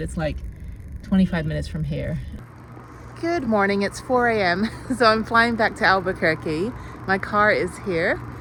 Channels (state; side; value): identical; both; correlation 1.00